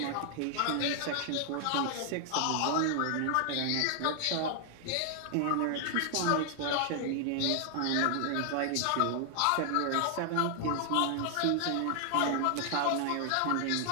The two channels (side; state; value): both; different; correlation 0.00